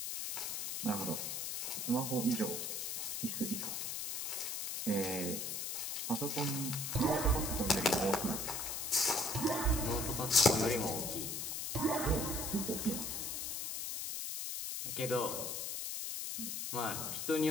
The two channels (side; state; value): left; noise; hiss, 2 dB below the sound